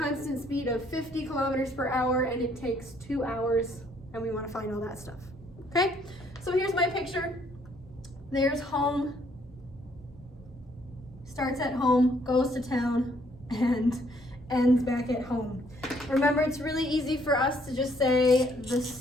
speed of 50 kilometers per hour, and it takes 2 hours, and we want to find all that stuff. Okay, so here's my picture. There's home, starts at home, goes to town, and ends back at home. Remember, it's really easy for us to just say the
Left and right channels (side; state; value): both; normal; correlation 0.66